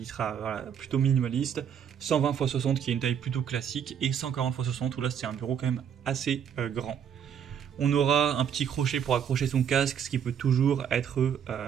sera voilà, plutôt minimaliste. 120 x 60 qui est une taille plutôt classique, et 140 x 60 où là c'est un bureau quand même assez grand. On aura un petit crochet pour accrocher son casque, ce qui peut toujours être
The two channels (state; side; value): quieter; left; 8.3 dB